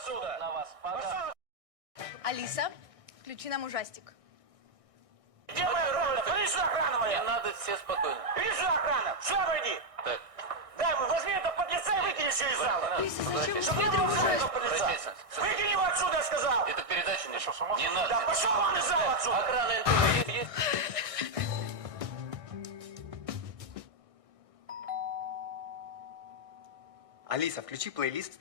На вас Пошел. Алиса, включи нам ужастик. Где моя охрана? Иди сюда, охрана моя. Не надо, все спокойно. Иди сюда, охрана. Сюда войди. Так, Дай, возьми это подлеца и выкини все из зала. Чтобы не было в зале этого подлеца. Выкини его отсюда, я сказал. это передача не Не надо. Да, пошел вон из зала отсюда. Охрана НТВ есть? Алиса, включи плейлист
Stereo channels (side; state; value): left; late; 1.6 ms